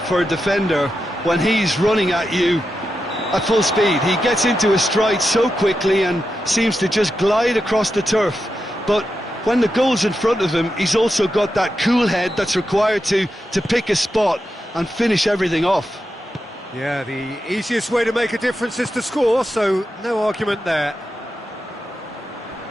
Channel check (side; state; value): both; normal; correlation 0.88